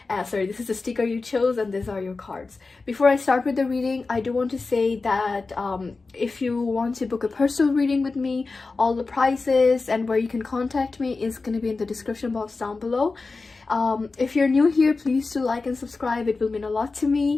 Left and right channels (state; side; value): quieter; right; 3.9 dB